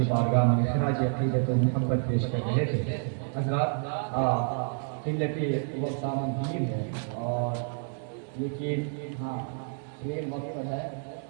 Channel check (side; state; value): left; silent; 59 dB below the other